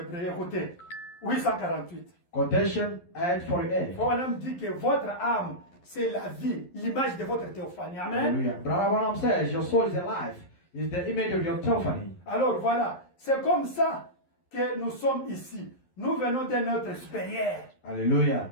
écoutez, 848. Quotation 848. Branham dit que votre âme, c'est la vie, l'image de votre théophanie. Amen. Hallelujah. Brother Branham says your soul is alive, is the image of your theophany. Alors voilà, c'est comme ça que nous sommes ici. Nous venons de notre supérieur. Hallelujah.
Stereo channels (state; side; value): late; right; 11 ms